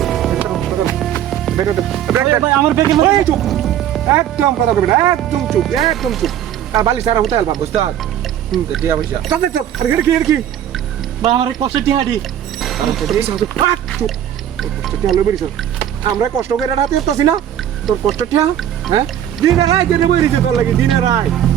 ভাই আমার বেগে চুপ একদম কথা কইবি না একদম চুপ আর বালি সারা হতে পারবা উস্তাদ টিয়া পয়সা চুপ আর কি ভাই আমার কষ্ট টিহাডি আমরা কষ্ট করে রাতে উঠতেছি না তোর কষ্ট ঠিয়া হ্যাঁ দিনে রায় দিনে বইরিছে তোর লাগে দিনে রায়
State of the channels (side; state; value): left; quieter; 10.7 dB